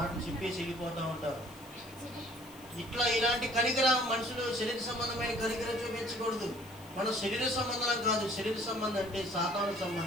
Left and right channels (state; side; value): noise; left; hiss, 22 dB below the sound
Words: చెప్పేసి వెళ్ళిపోతూ ఉంటారు. ఇలాంటి కనికరం మనుషులు శరీర సంబంధమైన కనికరం చూపించకూడదు. మన శరీర సంబంధం కాదు. శరీర సంబంధం అంటే సాతాను